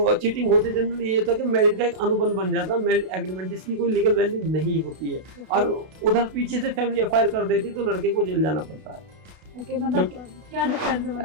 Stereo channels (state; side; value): late; left; 32 ms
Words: चीटिंग होती है जनरली ये होता है कि मैरिज का एक अनुबंध बन जाता है, मैरिज एग्रीमेंट, जिसकी कोई लीगल वैल्यू नहीं होती है, और उधर पीछे से फैमिली एफआईआर कर देती है तो लड़के को जेल जाना पड़ता है। मतलब क्या डिफरेंस है?